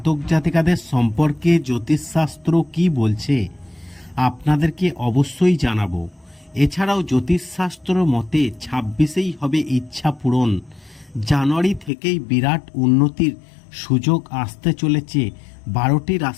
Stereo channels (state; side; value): drops out; right; at 11.9 s